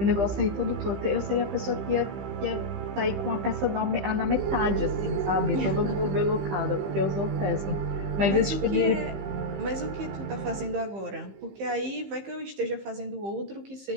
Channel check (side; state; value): left; late; 15 ms